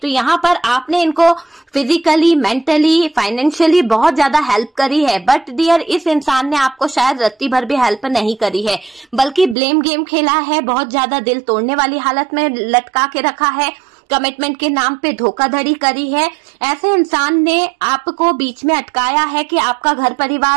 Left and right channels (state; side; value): drops out; left; at 9.6 s